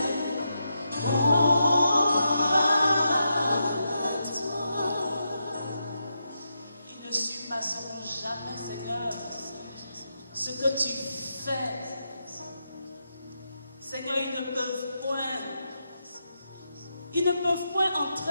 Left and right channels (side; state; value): both; inverted; correlation -0.85